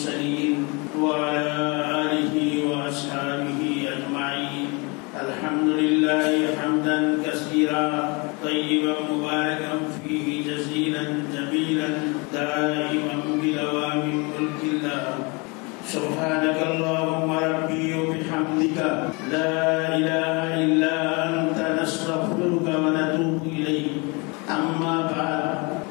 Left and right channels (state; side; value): quieter; right; 29.5 dB